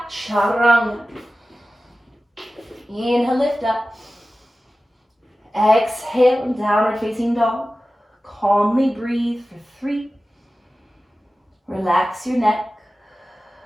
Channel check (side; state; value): both; normal; correlation 0.95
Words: chaturanga. Inhale, lift up. Exhale, downward facing dog. Calmly breathe for 3. Relax your neck.